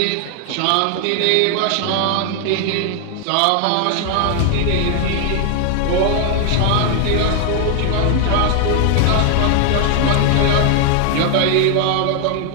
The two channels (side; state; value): both; different; correlation 0.00